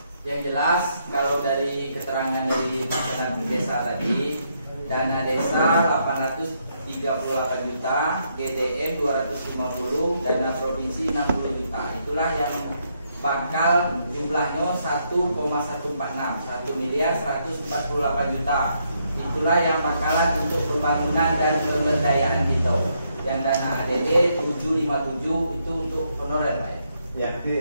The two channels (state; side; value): inverted; both; correlation -0.76